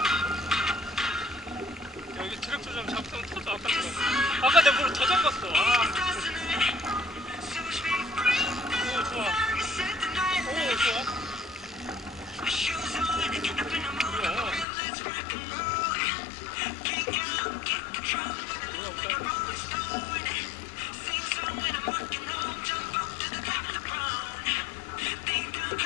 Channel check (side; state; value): right; drops out; at 14.7 s